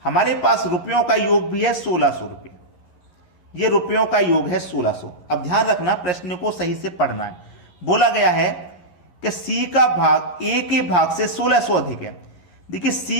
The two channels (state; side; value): late; right; 11 ms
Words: हमारे पास रुपयों का योग भी है 1600 रुपये, ये रुपयों का योग है 1600। अब ध्यान रखना, प्रश्न को सही से पढ़ना है। बोला गया है कि सी का भाग ए के भाग से 1600 अधिक है। देखिए